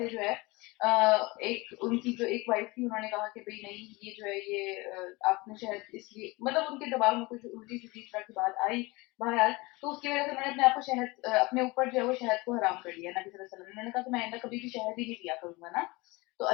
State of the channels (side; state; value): right; quieter; 23.6 dB